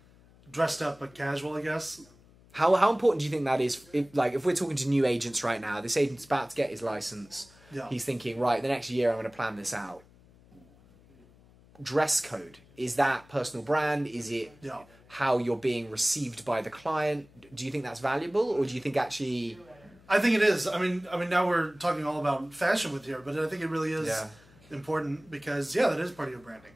dressed up but casual, I guess. How important do you think that is? If we're talking to new agents right now, this agent's about to get his license. Yeah. He's thinking, right, the next year I'm going to plan this out. Dress code, is that personal brand? Is it how you're being received by the client? Do you think that's valuable, or do you think actually? I think it is. I mean, now we're talking all about fashion with here, but I think it really is important because that is part of your branding.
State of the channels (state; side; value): noise; left; hum, 26 dB below the sound